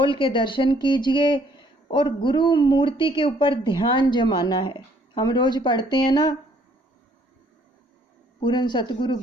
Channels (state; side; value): normal; both; correlation 0.63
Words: के दर्शन कीजिए और गुरु मूर्ति के ऊपर ध्यान जमाना है। हम रोज पढ़ते हैं ना, पूर्ण सतगुरु